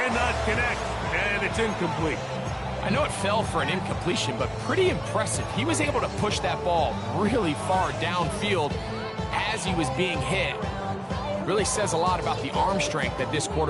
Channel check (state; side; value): identical; both; correlation 1.00